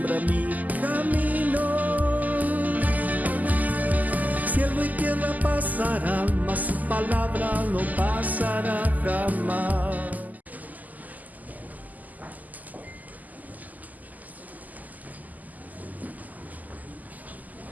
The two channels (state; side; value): late; left; 0.080 ms